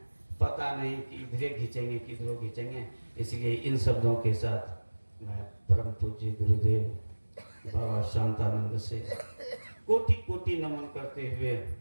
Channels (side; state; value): both; inverted; correlation -1.00